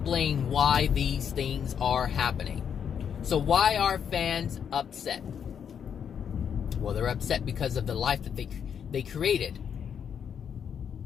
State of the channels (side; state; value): right; quieter; 7.8 dB